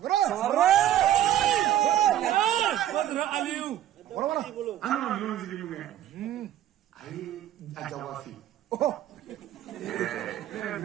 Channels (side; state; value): left; quieter; 12.1 dB